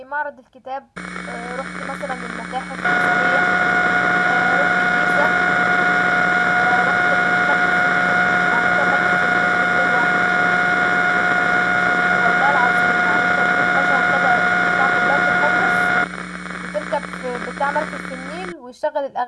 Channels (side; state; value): both; identical; correlation 1.00